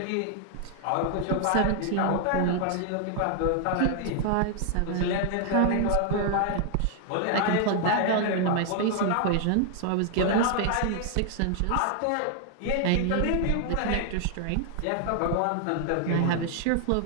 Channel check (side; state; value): both; different; correlation 0.00